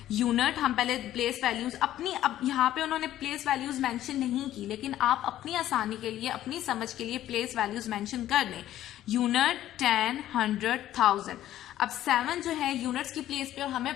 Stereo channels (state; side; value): quieter; right; 13.0 dB